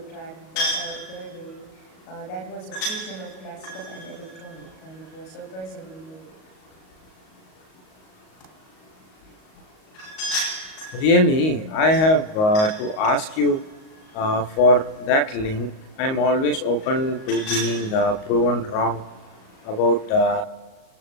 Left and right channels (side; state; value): right; late; 38 ms